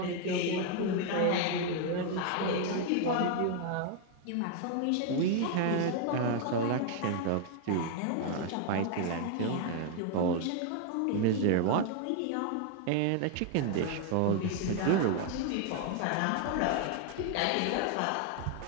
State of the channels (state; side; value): different; both; correlation 0.01